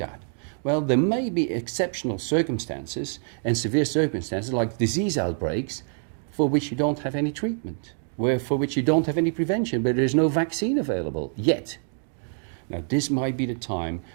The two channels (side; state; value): left; silent; 61 dB below the other